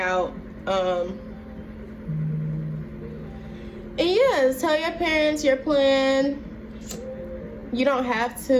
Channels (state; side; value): identical; both; correlation 1.00